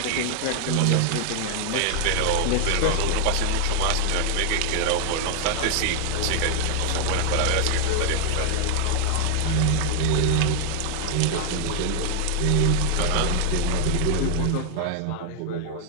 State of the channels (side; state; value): both; different; correlation 0.00